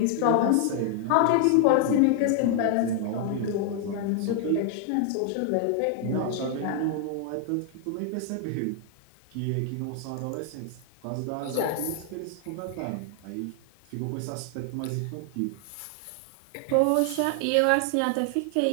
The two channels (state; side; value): different; both; correlation 0.00